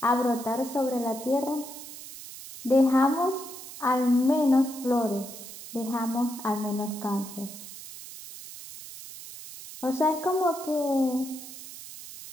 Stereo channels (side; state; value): right; noise; hiss, 13 dB below the sound